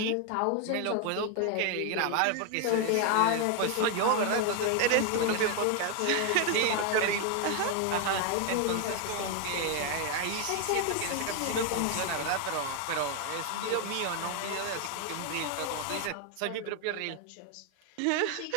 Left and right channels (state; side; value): different; both; correlation 0.01